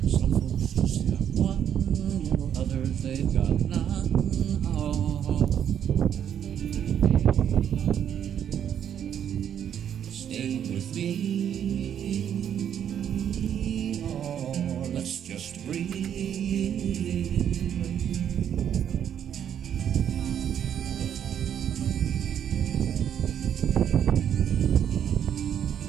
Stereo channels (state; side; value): quieter; left; 9.2 dB